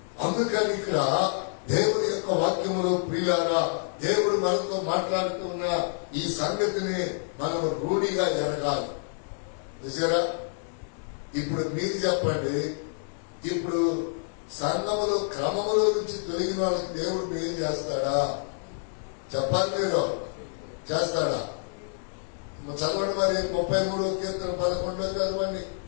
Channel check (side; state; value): right; silent; digital silence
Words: అందుకని ఇక్కడ దేవుని యొక్క వాక్యములో ప్రియులారా, దేవుడు మనతో మాట్లాడుతున్న ఈ సంగతిని మనం రూఢిగా ఎరగాలి. చూసారా? ఇప్పుడు మీరు చెప్పండి, ఇప్పుడు సంఘములో క్రమములో నుంచి తొలగిన వాళ్ళకి దేవుడు మేలు చేస్తాడా? చెప్పాలి. మీరు చేస్తాడా? చదవండి మరి 33వ కీర్తన 11 చదవండి.